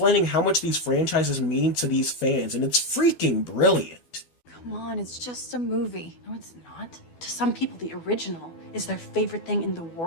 how much these franchises mean to these fans, and it's freaking brilliant. Come on, it's just a movie. No, it's not. To some people, the original is their favorite thing in the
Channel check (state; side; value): late; right; 12 ms